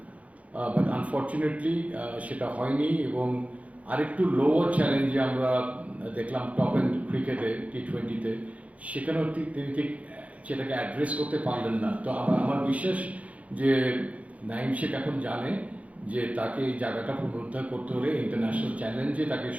বাট আনফর্চুনেটলি সেটা হয়নি, এবং আরেকটু লোয়ার চ্যালেঞ্জে আমরা দেখলাম টপ এন্ড ক্রিকেটে T20-তে, সেখানেও তিনি ঠিক সেটাকে অ্যাড্রেস করতে পারলেন না। তো আমার বিশ্বাস যে নাঈম শেখ এখন জানে যে তাকে এই জায়গাটা পুনরুদ্ধার করতে হলে, ইন্টারন্যাশনাল চ্যালেঞ্জে তাকে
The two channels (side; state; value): left; late; 0.066 ms